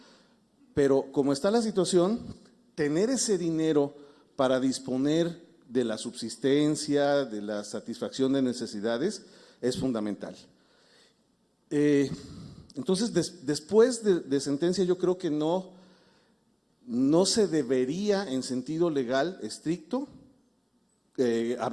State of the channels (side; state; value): both; identical; correlation 1.00